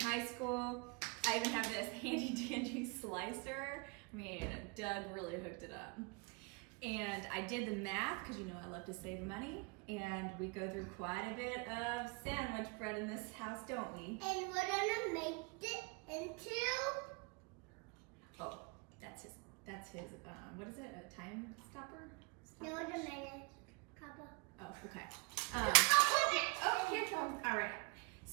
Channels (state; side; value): quieter; left; 30.1 dB